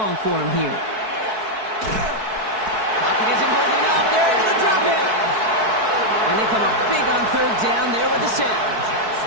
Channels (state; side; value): late; left; 4.6 ms